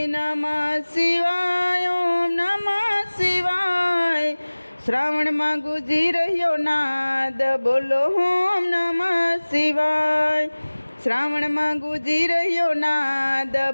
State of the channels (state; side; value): inverted; both; correlation -1.00